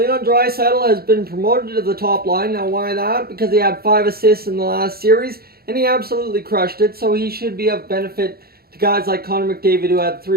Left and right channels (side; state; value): left; late; 0.45 ms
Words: Draisaitl has been promoted to the top line. Now, why that? Because he had 5 assists in the last series, and he absolutely crushed it, so he should be of benefit to guys like Connor McDavid, who had